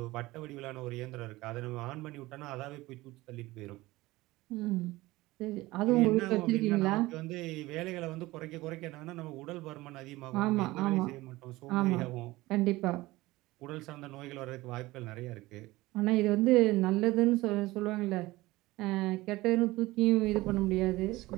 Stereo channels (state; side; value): quieter; left; 19.3 dB